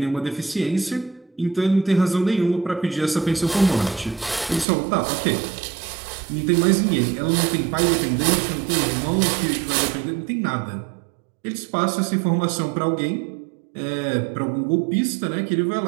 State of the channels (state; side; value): drops out; left; at 4.7 s